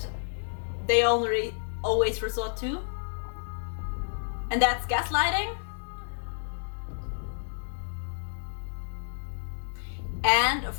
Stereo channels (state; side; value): silent; right; digital silence